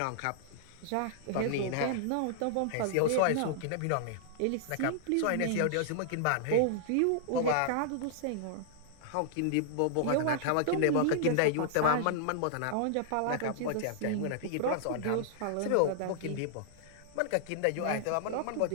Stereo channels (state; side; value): different; both; correlation -0.01